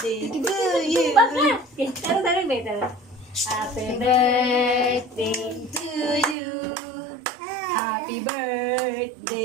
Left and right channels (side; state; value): left; drops out; at 6.4 s